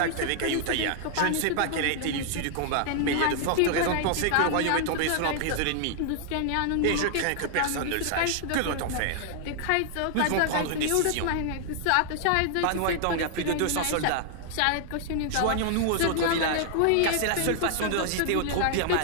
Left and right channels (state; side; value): different; both; correlation 0.00